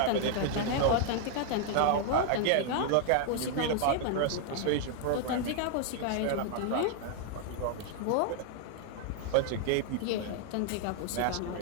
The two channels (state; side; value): different; both; correlation 0.00